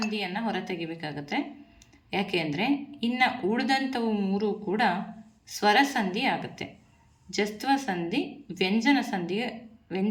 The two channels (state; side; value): identical; both; correlation 1.00